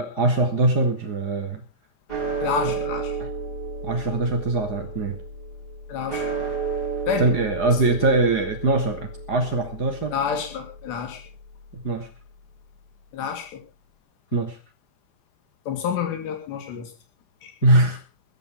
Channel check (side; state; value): right; late; 4.9 ms